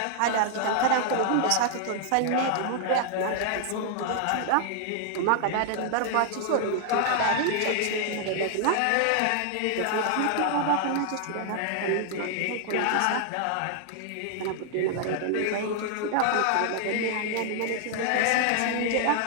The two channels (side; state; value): both; different; correlation 0.00